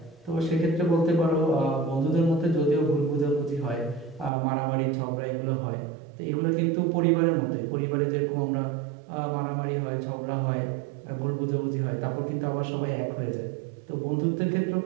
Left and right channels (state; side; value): drops out; left; at 4.3 s